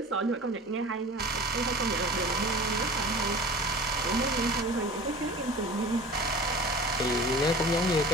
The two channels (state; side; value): normal; both; correlation 0.38